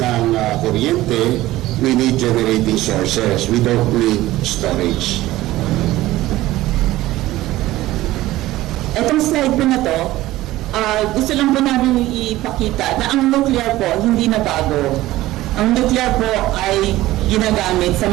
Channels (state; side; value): quieter; left; 16.6 dB